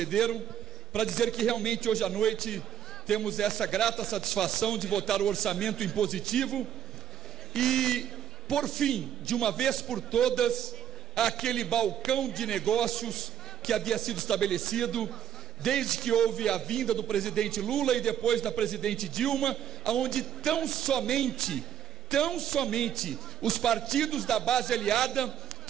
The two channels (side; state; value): left; quieter; 9.6 dB